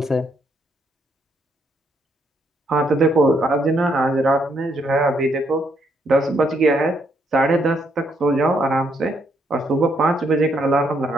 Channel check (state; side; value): normal; both; correlation 0.74